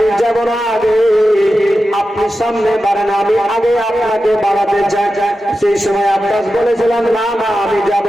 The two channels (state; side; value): normal; both; correlation 0.92